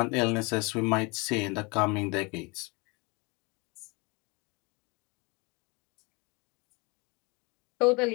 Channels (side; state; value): right; quieter; 28.4 dB